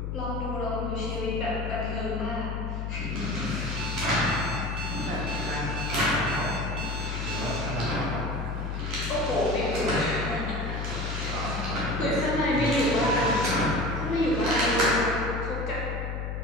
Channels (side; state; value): left; noise; hum, 3 dB below the sound